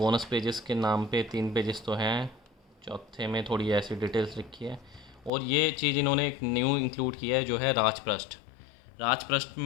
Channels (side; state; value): right; drops out; at 5.3 s